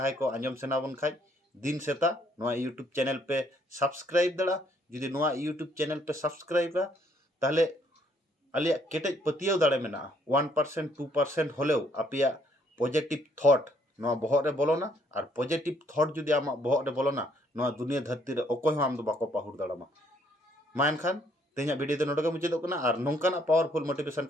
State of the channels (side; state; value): both; normal; correlation 0.67